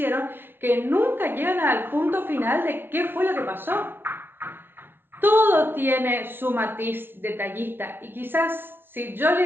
que nunca llegan al punto final de qué fue lo que pasó. Todo tiene su matiz detallista y quizás si yo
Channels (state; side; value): late; left; 0.11 ms